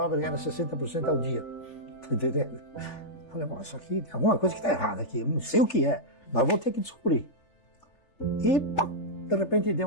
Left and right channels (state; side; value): late; right; 3.3 ms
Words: era 60% ao dia. Tá entendendo? Falei, bom, isso aqui tem alguma coisa que está errada aqui, eu não sei o que é, mas vou ter que descobrir. E de repente